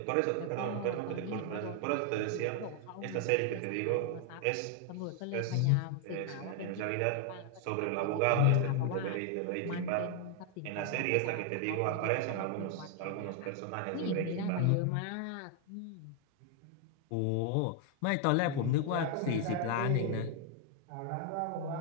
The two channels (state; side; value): different; both; correlation 0.00